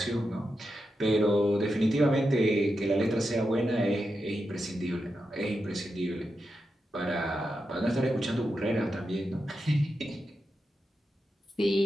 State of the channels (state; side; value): normal; both; correlation 0.88